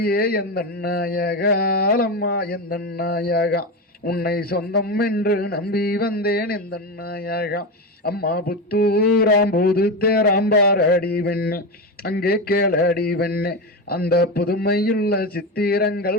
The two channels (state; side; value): normal; both; correlation 0.17